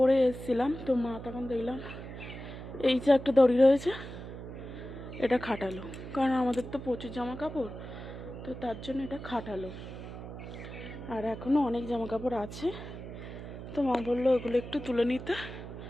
এসেছিলাম, তো মা তখন দেখলাম এই যে একটা দড়ি রয়েছে এটা খাটালো, কারণ আমাদের তো প্রচুর জামা কাপড়, তো তার জন্য এটা খাটালো। আর এখনও অনেক জামা কাপড় আছে, তো মা বললো ওগুলো একটু তুলে নিতে।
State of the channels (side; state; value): right; noise; hum, 10 dB below the sound